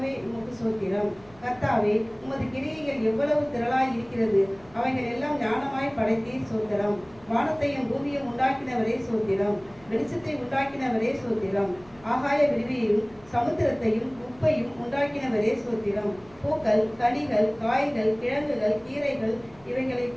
உமக்கு சோத்திரம். கர்த்தாவே, உமது கிரியைகள் எவ்வளவு திரளாய் இருக்கிறது, அவைகள் எல்லாம் ஞானமாய் படைத்தீர் சோத்திரம். வானத்தையும் பூமியும் உண்டாக்கினவரே சோத்திரம். வெளிச்சத்தை உண்டாக்கினவரே சோத்திரம். ஆகாய விரிவையும் சமுத்திரத்தையும் உப்பையும் உண்டாக்கினவரே சோத்திரம். பூக்கள், கனிகள், காய்கள், கிழங்குகள், கீரைகள் இவைகளை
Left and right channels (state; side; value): noise; right; hum, 26 dB below the sound